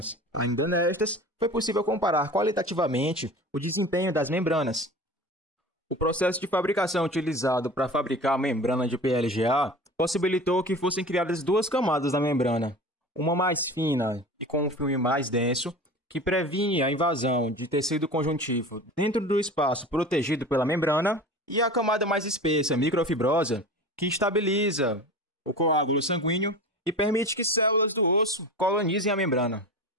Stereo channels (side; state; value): both; normal; correlation 0.35